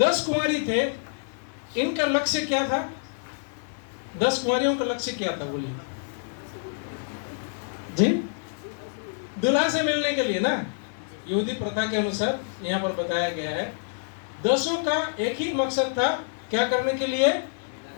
कुमारी थे, इनका लक्ष्य क्या था? 10 कुमारियों का लक्ष्य क्या था बोलिए जी? दुल्हा से मिलने के लिए ना, यहूदी प्रथा के अनुसार यहाँ पर बताया गया है। 10 का एक ही मकसद था, क्या करने के लिए?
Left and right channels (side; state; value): right; silent; digital silence